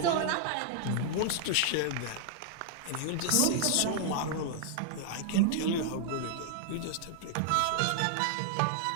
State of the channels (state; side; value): different; both; correlation -0.01